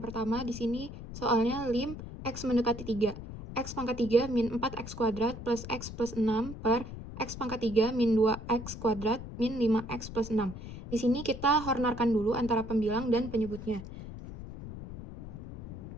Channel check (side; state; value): left; noise; rumble, 11 dB below the sound